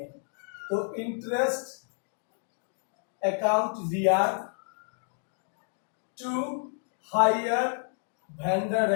तो interest account DR to hire vendor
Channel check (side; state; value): right; silent; 58 dB below the other